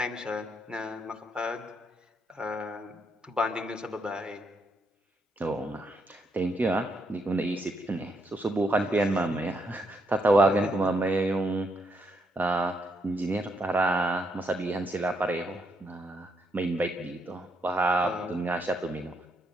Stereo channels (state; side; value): normal; both; correlation 0.77